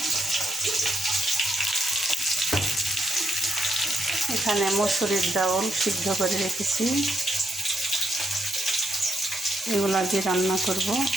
এখানে মসুরির ডাউল সিদ্ধ করে রেখেছি, এগুলো দিয়ে রান্না করব।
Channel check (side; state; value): both; normal; correlation 0.79